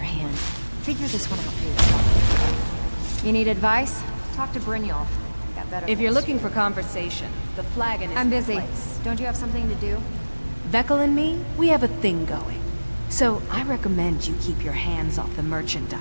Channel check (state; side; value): inverted; both; correlation -1.00